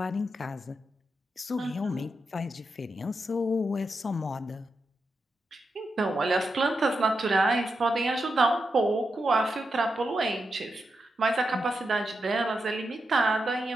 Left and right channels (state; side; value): normal; both; correlation 0.86